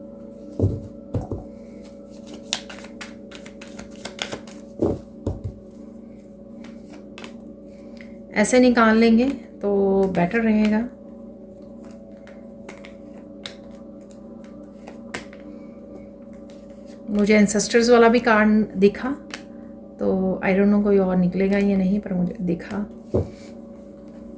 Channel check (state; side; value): identical; both; correlation 1.00